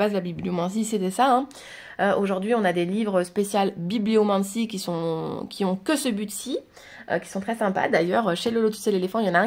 la bibliomancie, c'était ça. Aujourd'hui, on a des livres spéciaux bibliomancie qui ont que ce but-ci, qui sont très sympas. D'ailleurs, chez le Lotus et l'éléphant, il y en a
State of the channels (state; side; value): identical; both; correlation 1.00